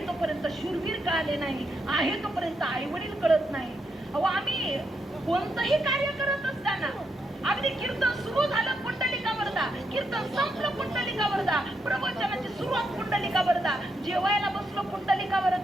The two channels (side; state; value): both; normal; correlation 0.81